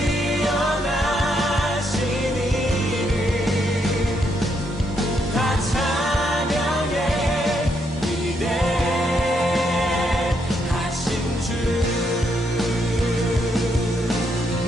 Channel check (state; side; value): normal; both; correlation 0.77